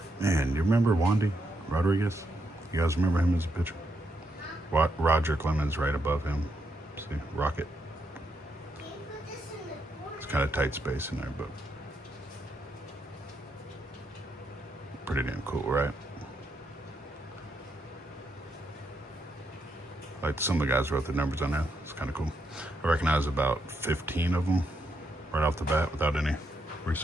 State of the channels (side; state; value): both; normal; correlation 0.79